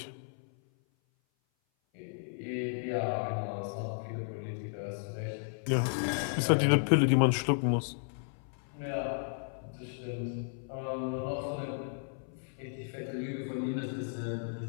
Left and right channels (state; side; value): silent; right; 55 dB below the other